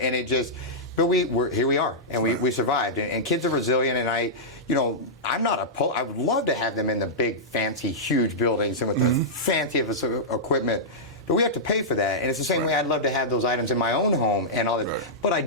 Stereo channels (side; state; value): both; normal; correlation -0.11